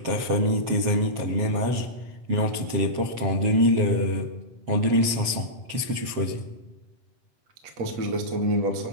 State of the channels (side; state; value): left; late; 7.6 ms